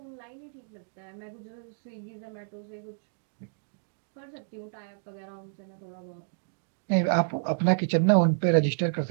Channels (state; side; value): silent; left; digital silence